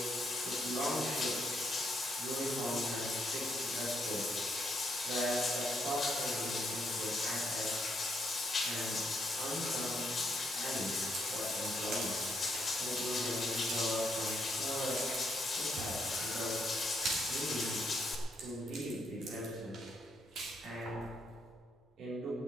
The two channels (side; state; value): both; normal; correlation 0.75